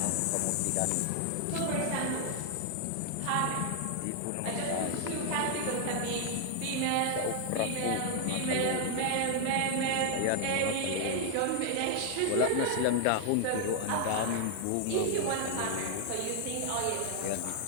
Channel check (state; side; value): different; both; correlation 0.00